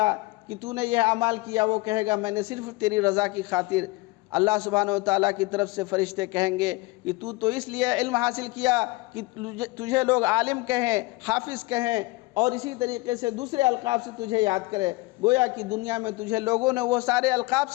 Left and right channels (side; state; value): right; quieter; 22.7 dB